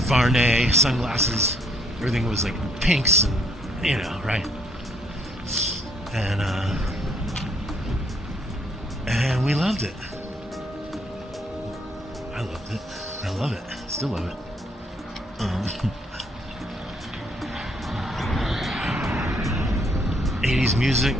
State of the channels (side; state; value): both; normal; correlation 0.68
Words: Varney sunglasses. Everything was like pinks, and, you know, right? And we loved it. I loved it. I love it. Still love it. 80s music.